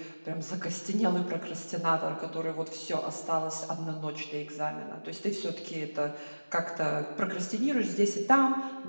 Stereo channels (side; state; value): both; inverted; correlation -1.00